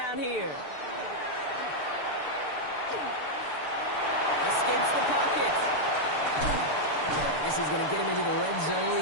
here. Escapes the pocket. This is going to get him into the red zone.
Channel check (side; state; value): right; late; 6.8 ms